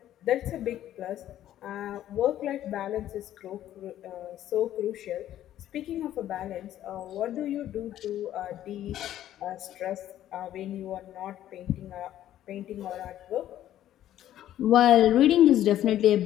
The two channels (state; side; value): quieter; right; 12.3 dB